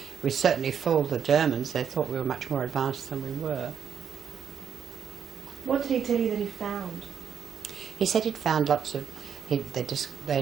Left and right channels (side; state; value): left; quieter; 7.7 dB